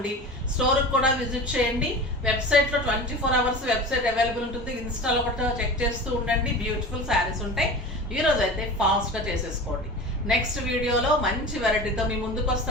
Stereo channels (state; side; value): normal; both; correlation 0.34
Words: స్టోర్కి కూడా విజిట్ చేయండి. వెబ్సైట్లో 24 అవర్స్ వెబ్సైట్ అవైలబుల్ ఉంటుంది. ఇన్స్టాలో ఒకటి చెక్ చేస్తూ ఉండండి. బ్యూటిఫుల్ శారీస్ ఉంటాయి. ఈరోజు అయితే ఫాస్ట్గా చేసేసుకోండి. నెక్స్ట్ వీడియోలో మంచి వెరైటీతో మీ ముందుకు